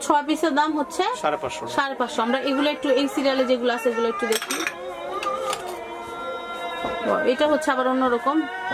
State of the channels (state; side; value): identical; both; correlation 1.00